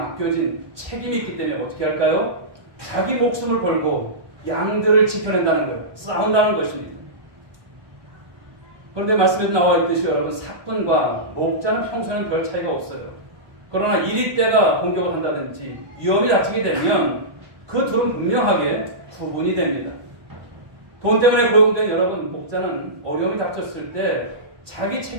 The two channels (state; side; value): late; left; 1.2 ms